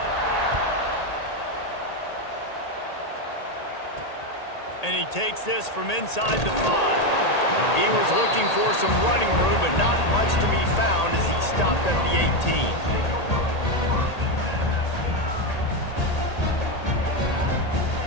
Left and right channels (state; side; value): late; right; 1.8 ms